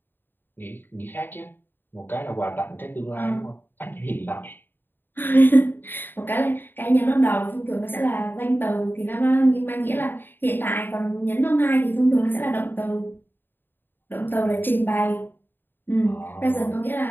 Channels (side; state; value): right; late; 0.096 ms